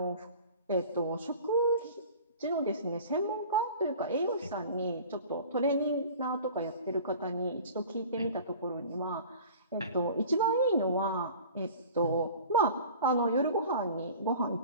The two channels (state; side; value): inverted; both; correlation -0.42